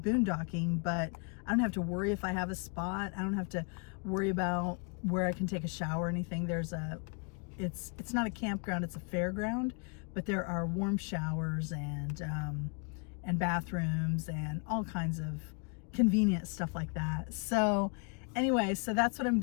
but I don't have to worry if I have a spot. I don't have to worry about where I can take a shower or anything. It's not a campground, it's a fairground, but there are warm showers and bathrooms and all kinds of convenient stuff like that. So anyway, so that's what I'm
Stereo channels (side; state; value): right; quieter; 37.0 dB